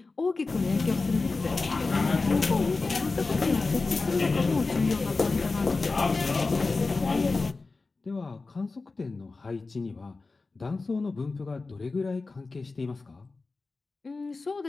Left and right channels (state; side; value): quieter; right; 3.8 dB